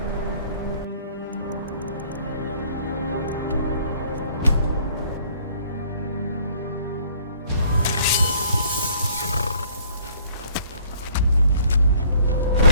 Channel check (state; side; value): inverted; both; correlation -0.57